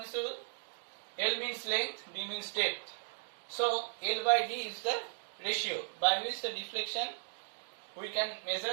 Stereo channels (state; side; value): silent; left; digital silence